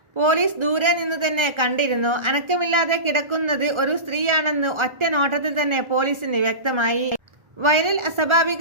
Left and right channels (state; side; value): late; left; 1.3 ms